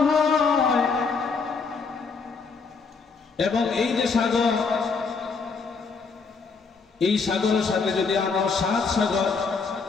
হয় এবং এই যে সাগর, এই সাগরের সাথে যদি আমার 7 সাগর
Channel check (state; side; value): quieter; right; 4.8 dB